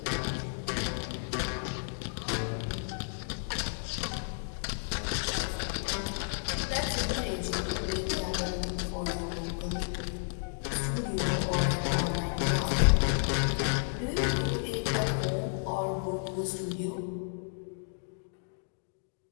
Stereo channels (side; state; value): right; silent; digital silence